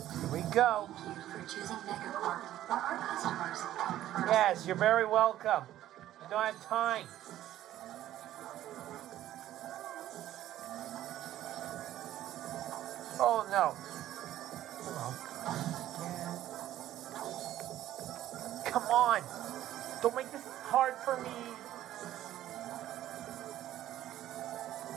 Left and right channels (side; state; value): left; quieter; 13.1 dB